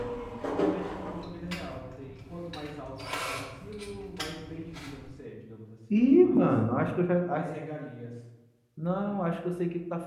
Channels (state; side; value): identical; both; correlation 1.00